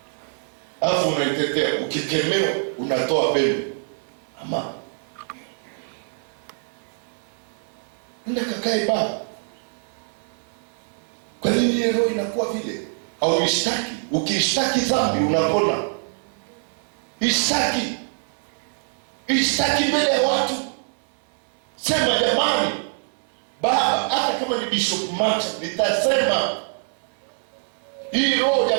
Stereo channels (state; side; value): silent; left; digital silence